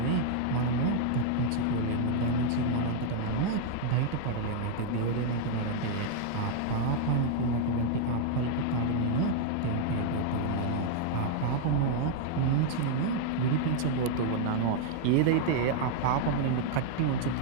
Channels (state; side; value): different; both; correlation 0.00